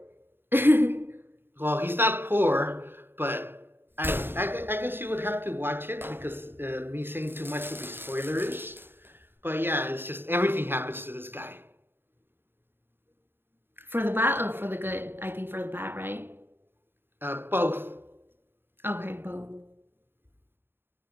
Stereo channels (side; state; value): left; late; 0.10 ms